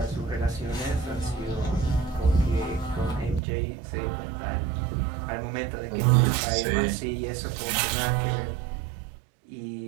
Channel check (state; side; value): drops out; left; at 3.4 s